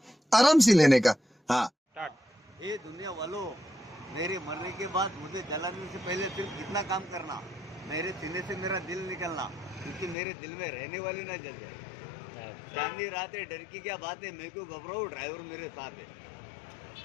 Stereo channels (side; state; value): right; drops out; at 10.2 s